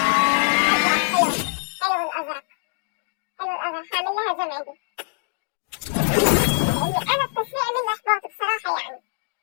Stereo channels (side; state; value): right; silent; digital silence